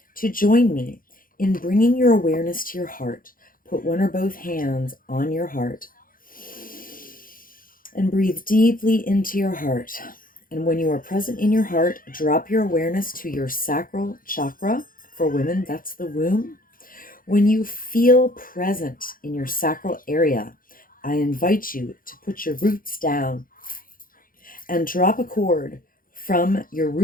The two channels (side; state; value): right; late; 0.41 ms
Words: to join me in bringing your awareness to your heart. Put one or both hands on your heart and breathe deeply into your heart. And when you are present in your heart, drop your awareness to your sacral chakra. For women, that's the womb. When you feel present in your sacral area, I invite you to put your roots down and drop a cord from your